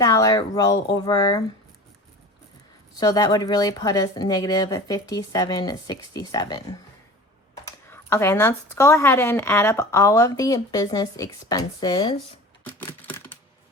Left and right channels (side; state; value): both; normal; correlation 0.38